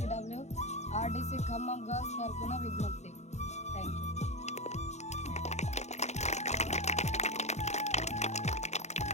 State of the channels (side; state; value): right; late; 0.33 ms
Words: RDC ఖమ్మం గర్ల్స్ తరఫున విజ్ఞప్తి. Thank you.